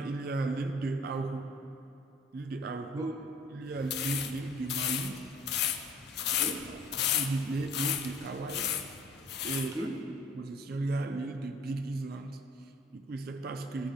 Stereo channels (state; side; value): normal; both; correlation 0.54